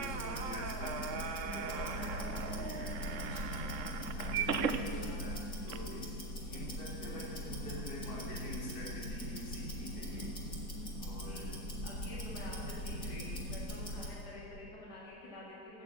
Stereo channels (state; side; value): late; right; 4.3 ms